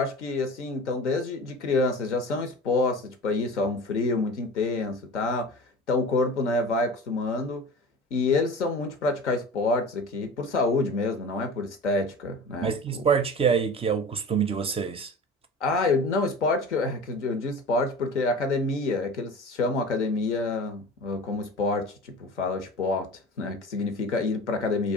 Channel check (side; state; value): both; normal; correlation 0.36